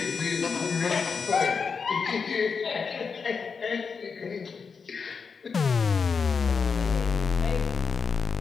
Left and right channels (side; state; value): right; quieter; 5.5 dB